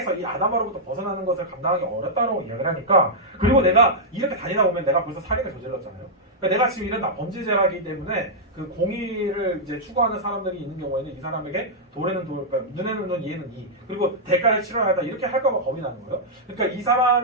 이 아담으로부터 벗어나는 것을 감당하기 어렵다고 이야기를 하니까 그리고 내가 이렇게 다니다 보면 내가 벌써 살인을 저질렀잖아요. 그러니까 내가 지금 이런 범죄자이기 때문에 그 공의를 이제 추구하는 사람들이 있는 경우에는 이 사람에게 돌에는 돌, 그러니까 눈에는 눈, 이에는 이 그리고 대가를 치러야 한다 이렇게 할까봐 겁이 나는 거예요. 그러니까 이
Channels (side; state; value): both; normal; correlation -0.08